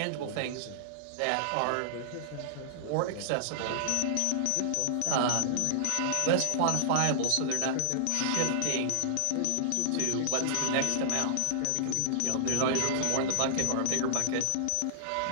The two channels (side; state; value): both; different; correlation -0.01